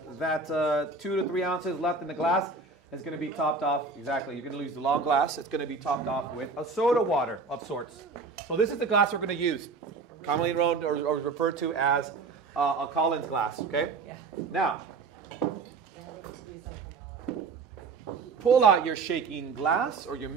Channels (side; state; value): left; quieter; 4.3 dB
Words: 2 to 3 ounces left in the glass is going to be topped off. Exactly, you're going to use the long glass. It's going to be topped off with a soda water of sorts. So this is the glass we're going to use, commonly known or referred to as a Collins glass. Okay, now. Pull out your shaking glass, or your